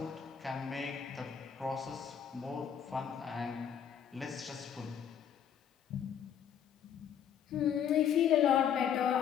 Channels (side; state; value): right; quieter; 8.6 dB